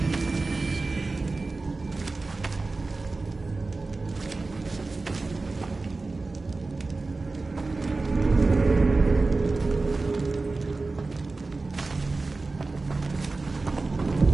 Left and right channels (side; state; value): left; quieter; 3.6 dB